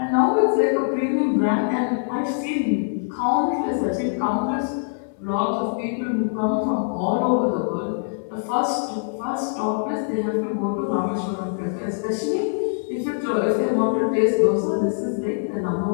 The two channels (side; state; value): right; silent; 63 dB below the other